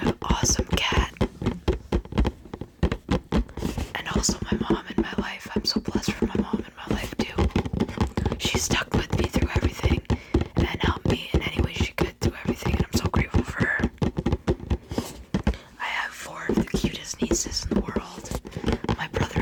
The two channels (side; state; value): both; identical; correlation 1.00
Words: awesome cat, and also my mom in my life. I'm so blessed for my mom in my life too. She stuck with me through everything and helped me in any way she could through everything, and I'm so grateful for her. I have 4 of the cutest nieces in the world. My brother